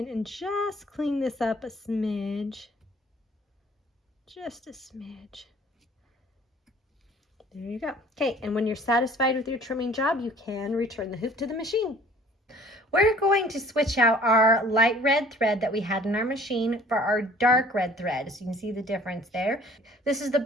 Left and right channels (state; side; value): normal; both; correlation 0.52